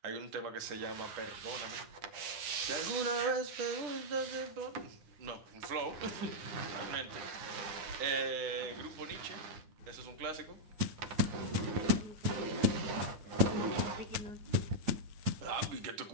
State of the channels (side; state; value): left; late; 9.8 ms